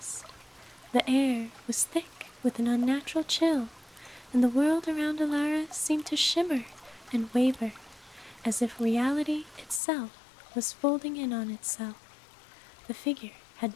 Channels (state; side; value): drops out; right; at 9.8 s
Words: The air was thick with an unnatural chill, and the world around Elara seemed to shimmer and waver, as if reality itself was folding in on itself. The figure had